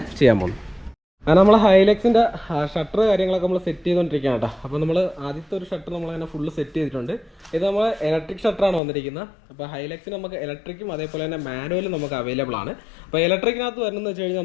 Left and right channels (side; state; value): right; drops out; at 8.8 s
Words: ചെയ്യാൻ പോകുന്നത്. അങ്ങനെ നമ്മൾ ഹൈലക്സിൻ്റെ ഷട്ടർ കാര്യങ്ങളൊക്കെ നമ്മൾ സെറ്റ് ചെയ്തുകൊണ്ടിരിക്കുകയാണ് കേട്ടോ. അപ്പോൾ നമ്മൾ ആദ്യത്തെ ഒരു ഷട്ടർ നമ്മളങ്ങനെ ഫുള്ള് സെറ്റ് ചെയ്തിട്ടുണ്ട്. ഇത് നമ്മൾ ഇലക്ട്രിക് ഷട്ടറാണ് വന്നിരിക്കുന്നത്. അപ്പോൾ ഹൈലക്സിന് നമുക്ക് ഇലക്ട്രിക്കും അതേപോലെ തന്നെ മാനുവലും നമുക്ക് അവൈലബിൾ ആണ്. അപ്പോൾ ഇലക്ട്രിക്കിനകത്ത് വരുന്നതെന്ന് വെച്ച് കഴിഞ്ഞാൽ